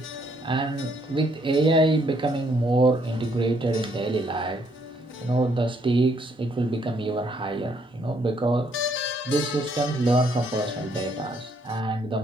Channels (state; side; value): normal; both; correlation 0.70